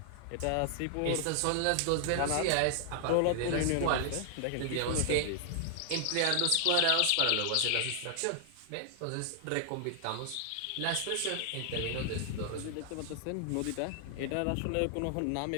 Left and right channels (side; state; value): both; different; correlation 0.00